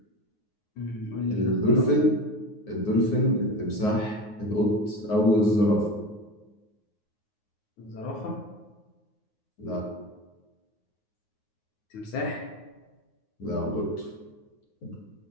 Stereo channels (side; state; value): right; late; 9.5 ms